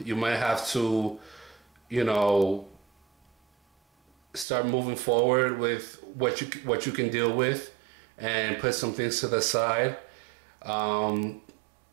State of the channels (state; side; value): drops out; left; at 4.5 s